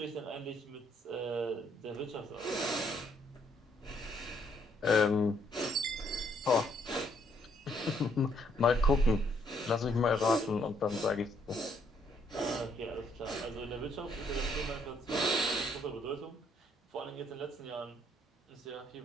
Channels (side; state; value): both; normal; correlation 0.69